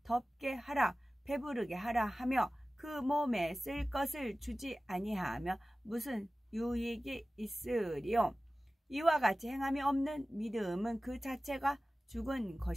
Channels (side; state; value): both; normal; correlation 0.96